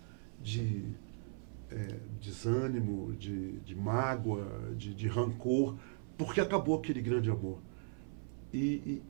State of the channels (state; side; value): silent; left; 52 dB below the other